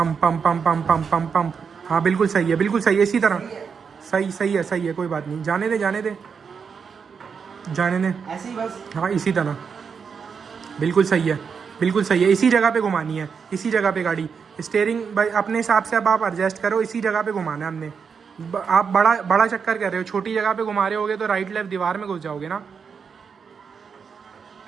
हाँ बिल्कुल सही है, इसी तरह सही है, कोई बात नहीं, जाने दे जाने दे। ऐसे ही बस। हाँ इसी तरह, बिल्कुल सही है, इसी जगह पे घुमानी है, इसी जगह पे गाड़ी। स्टेयरिंग भाई अपने हिसाब से अब आप एडजस्ट करो, इसी जगह पे घुमाना है हमने। आप बड़ा चक्कर कर रहे हो, छोटी जगह पे घुमा रहे होगे तो राइट लेफ्ट दीवार में घुस जाओगे ना।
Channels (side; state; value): left; quieter; 6.1 dB